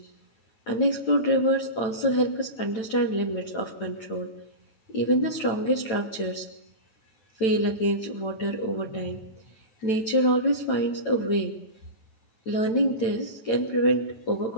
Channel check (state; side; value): late; right; 9.0 ms